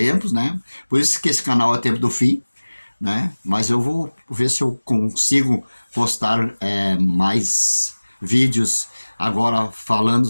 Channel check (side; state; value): both; inverted; correlation -1.00